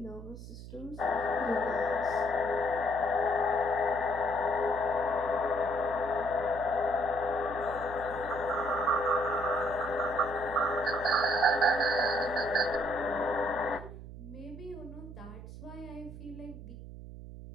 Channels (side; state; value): right; noise; hum, 13 dB below the sound